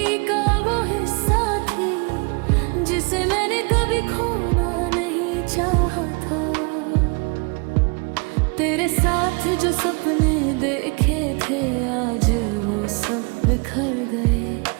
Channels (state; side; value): quieter; left; 32.2 dB